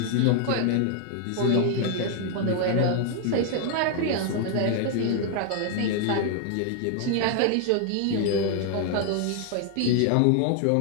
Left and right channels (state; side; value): different; both; correlation 0.00